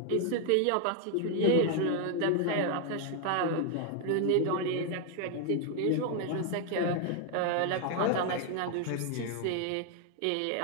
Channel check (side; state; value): both; different; correlation 0.00